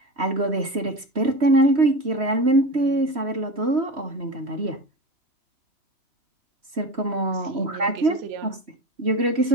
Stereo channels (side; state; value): left; late; 3.1 ms